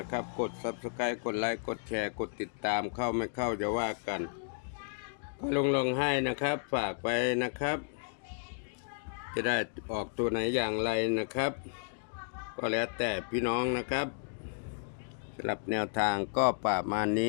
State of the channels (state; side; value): silent; right; digital silence